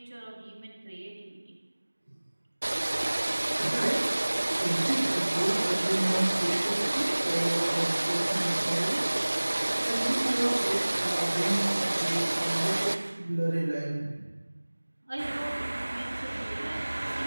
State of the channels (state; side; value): inverted; both; correlation -1.00